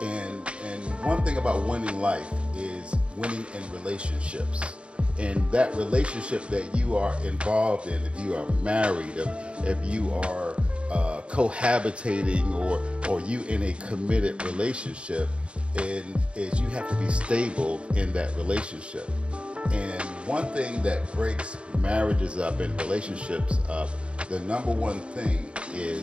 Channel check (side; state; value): left; late; 0.058 ms